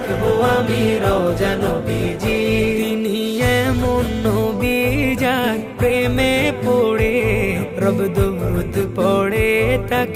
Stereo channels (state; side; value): identical; both; correlation 1.00